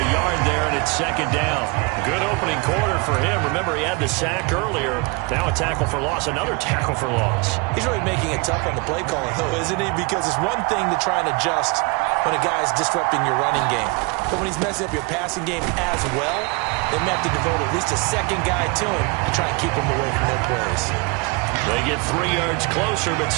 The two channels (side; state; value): left; quieter; 29.2 dB